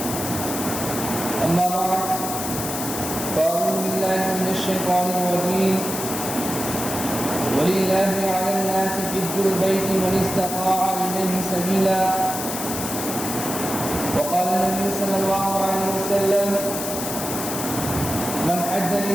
أما بعد فأعوذ بالله من الشيطان الرجيم ولله على الناس حج البيت من استطاع إليه سبيلا وقال النبي صلى الله عليه وسلم من حج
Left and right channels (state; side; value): noise; left; hiss, 5 dB below the sound